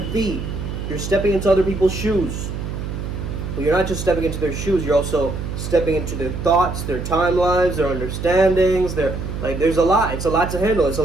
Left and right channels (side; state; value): right; noise; hum, 6 dB below the sound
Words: You're stepping into other people's shoes. But you're not just stepping into their shoes, you're also stepping into their thoughts, their timelines, their understandings, there's a lot. It's a lot to handle. It's a